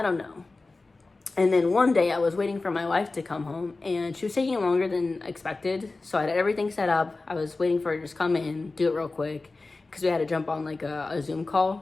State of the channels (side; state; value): right; quieter; 3.5 dB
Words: don't know. And then one day I was waiting for my wife to come home, and she was taking longer than expected. So I had everything set up. I was waiting for her to just come in, do it real quick, because we had to jump on like a Zoom